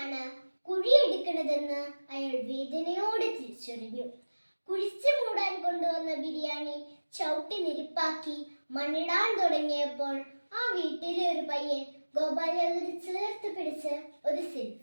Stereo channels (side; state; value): both; inverted; correlation -1.00